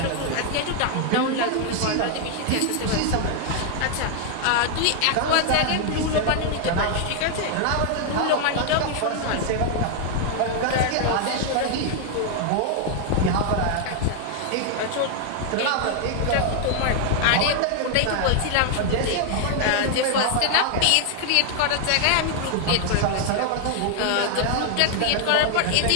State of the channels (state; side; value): different; both; correlation 0.00